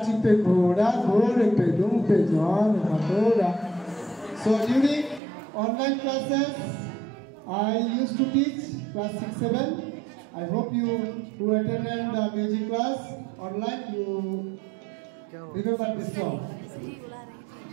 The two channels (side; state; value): left; drops out; at 5.2 s